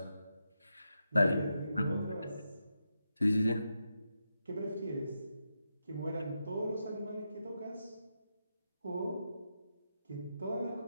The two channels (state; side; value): inverted; both; correlation -0.86